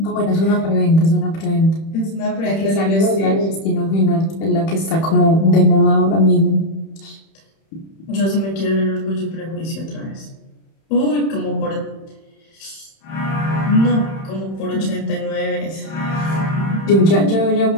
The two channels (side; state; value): right; late; 31 ms